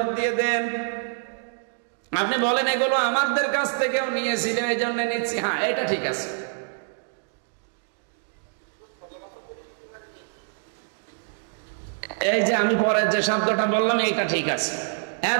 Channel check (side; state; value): left; silent; 61 dB below the other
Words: দিয়ে দেন। আপনি বলেন এগুলো আমাদের কাছ থেকেও নিয়েছিল এই জন্য নিচ্ছি, হ্যাঁ এটা ঠিক আছে। এই যে আমি পরের যে শব্দটা বললাম এইটা ঠিক আছে।